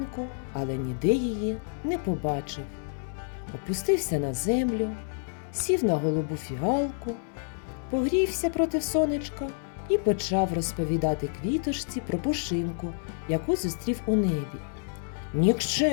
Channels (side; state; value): right; silent; digital silence